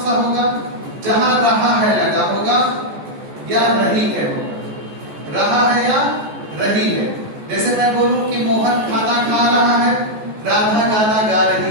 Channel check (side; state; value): left; late; 14 ms